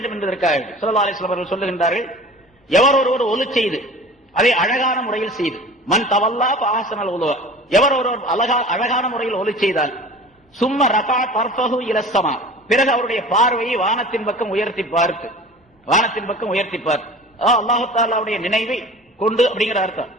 என்பதற்காக ஸல்லல்லாஹு அலைஹி வஸல்லம் அவர்கள் சொல்லுகின்றார்கள், எவர் ஒருவர் ஒலி செய்து அதை அழகான முறையில் செய்து, மன் தவல்லா ஃபஅஹ்ஸனல் உலூ, எவர் ஒருவர் அழகான முறையில் ஒலி செய்தால், சும்ம ரஃபஅ தர்ஃபஹு இலஸ் ஸமா, பிறகு அவருடைய பார்வையை வானத்தின் பக்கம் உயர்த்தி பார்த்து அல்லாஹ் தஆலாவுடைய நினைவை கொண்டு அப்படிங்கிற அர்த்தம்.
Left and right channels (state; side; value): normal; both; correlation 0.41